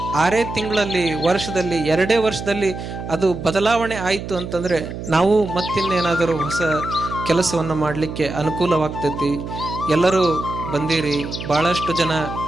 6 ತಿಂಗಳಲ್ಲಿ, ವರ್ಷದಲ್ಲಿ, 2 ವರ್ಷದಲ್ಲಿ ಅದು ಬದಲಾವಣೆ ಆಯಿತು ಅಂತಂದರೆ ನಾವು ಮತ್ತಿನ್ನೇನಾದರೂ ಹೊಸ ಕೆಲಸವನ್ನು ಮಾಡಲಿಕ್ಕೆ ಅನುಕೂಲವಾಗ್ತೈತಿ. ಎಲ್ಲರೂ ಬಂದಿರಿ, ಭಾಳಷ್ಟು ಜನ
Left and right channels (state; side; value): noise; right; hum, 8 dB below the sound